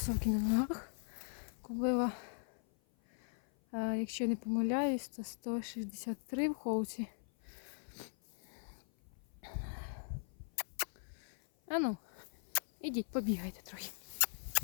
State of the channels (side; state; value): right; silent; 52 dB below the other